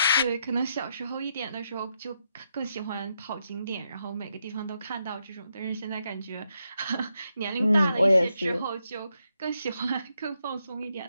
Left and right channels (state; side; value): inverted; both; correlation -0.81